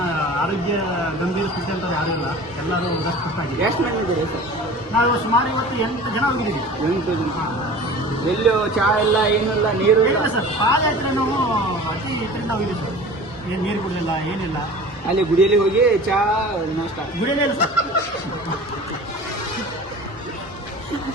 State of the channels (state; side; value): normal; both; correlation 0.40